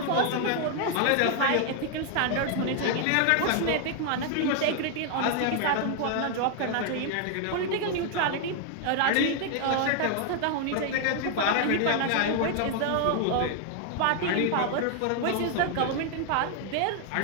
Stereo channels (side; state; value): both; different; correlation 0.00